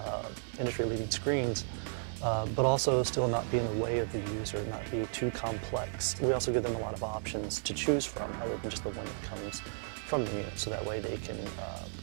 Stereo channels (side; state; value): left; silent; 55 dB below the other